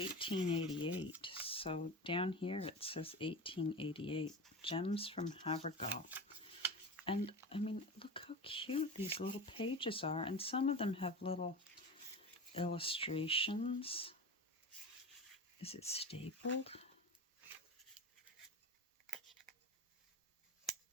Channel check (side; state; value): both; normal; correlation 0.28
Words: So down here it says 1888. Gems from Havergal. And I mean, look how cute these little pages are. And some of them have little illustrations. Is it stapled?